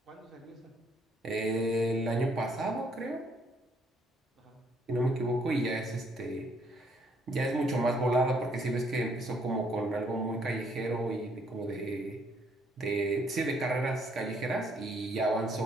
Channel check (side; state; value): both; normal; correlation 0.68